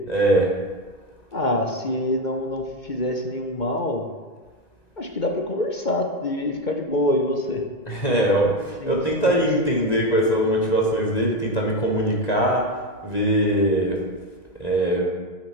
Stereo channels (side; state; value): right; late; 1.9 ms